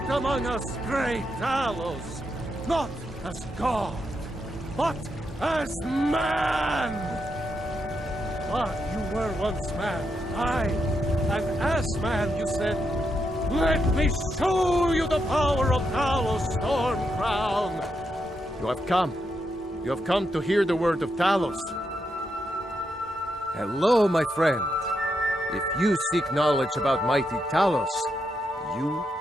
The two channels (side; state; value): both; normal; correlation 0.82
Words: among us, great Talos, not as God, but as man! But you were once man, aye, and as man you said, "Let me show you the power of Talos, Stormcrown!" You have come. You have come to hear the word of Talos. Hello, my friend. If you seek knowledge about mighty Talos, you